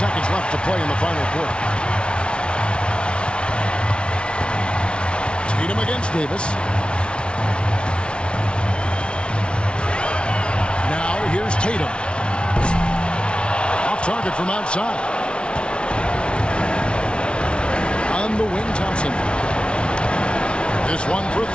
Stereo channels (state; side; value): late; right; 0.058 ms